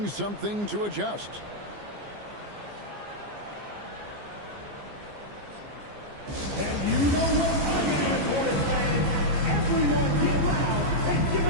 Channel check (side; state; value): left; late; 14 ms